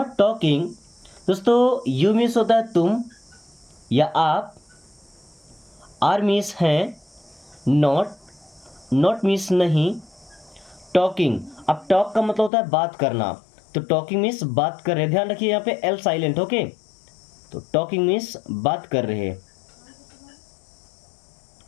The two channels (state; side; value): drops out; right; at 12.5 s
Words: talking, दोस्तों यू मीन्स होता है तुम या आप, आर मीन्स है, नॉट, नॉट मीन्स नहीं, टॉकिंग, अब टॉक का मतलब होता है बात करना, तो टॉकिंग मीन्स बात कर रहे, ध्यान रखिए यहाँ पे एल साइलेंट। ओके, तो टॉकिंग मीन्स बात कर रहे।